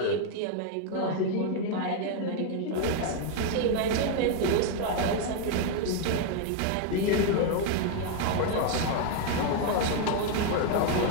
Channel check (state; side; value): different; both; correlation 0.01